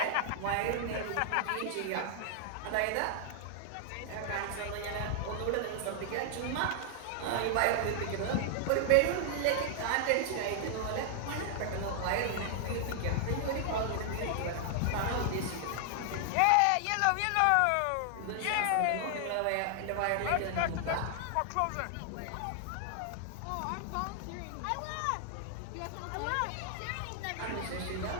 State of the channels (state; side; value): different; both; correlation 0.00